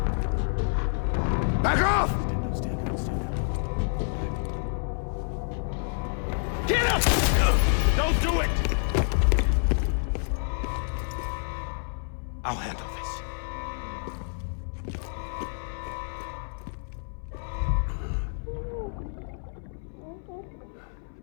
Back off! Get up! Don't do it! I'll handle this.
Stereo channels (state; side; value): silent; right; 59 dB below the other